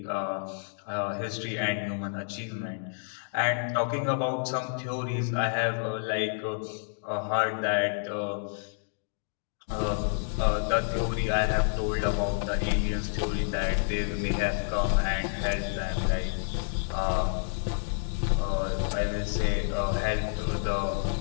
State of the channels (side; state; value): right; silent; digital silence